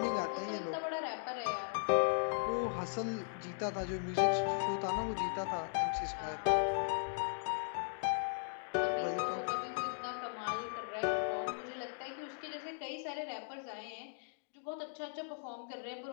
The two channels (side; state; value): right; silent; digital silence